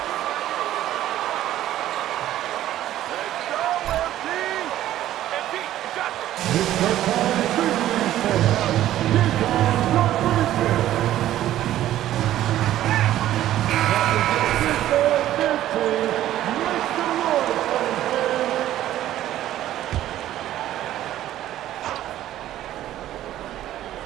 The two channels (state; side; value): quieter; left; 13.1 dB